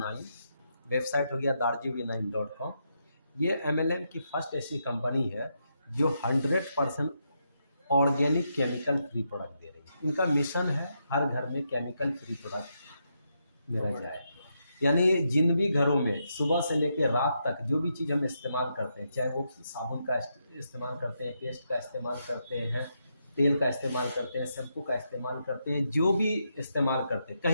वेबसाइट हो गया darjuv9.com। ये MLM की फर्स्ट ऐसी कंपनी है जो 100% ऑर्गेनिक केमिकल फ्री प्रोडक्ट दे रही है। इनका मिशन है हर घर में केमिकल फ्री प्रोडक्ट मेरा जाए। यानी जिन भी घरों में सुबह से लेकर रात तक जो भी चीज़ हम इस्तेमाल करते हैं, चाहे वो साबुन का इस्तेमाल करते हैं, पेस्ट का इस्तेमाल करते हैं, तेल का इस्तेमाल करते हैं, शैम्पू का इस्तेमाल करते हैं, जो भी इस्तेमाल करते हैं,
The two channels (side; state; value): both; inverted; correlation -0.81